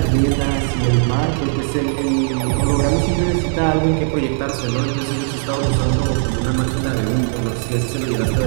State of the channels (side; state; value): left; silent; 62 dB below the other